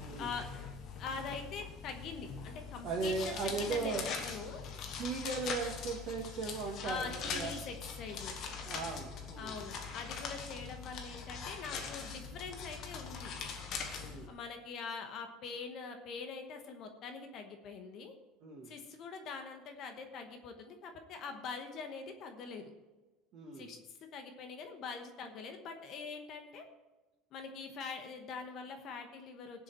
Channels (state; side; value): normal; both; correlation 0.43